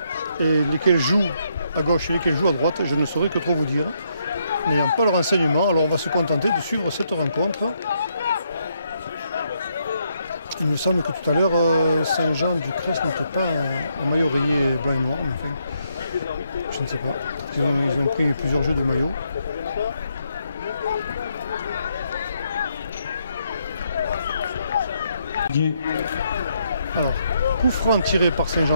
et lesquels jouent à gauche et lesquels jouent à droite, je ne saurais que trop vous dire. N'ayant pas le renseignement, alors on va se contenter de suivre cette rencontre. Il me semble que tout à l'heure, Saint-Jean-du-Cresse n'était pas en maillot rayé blanc et noir. Enfin, je ne sais pas. Ils ont pris plusieurs jeux de maillot. Alors, coup franc tiré par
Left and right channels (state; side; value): inverted; both; correlation -0.75